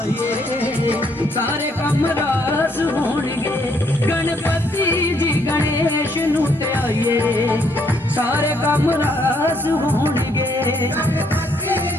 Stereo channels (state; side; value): normal; both; correlation 0.70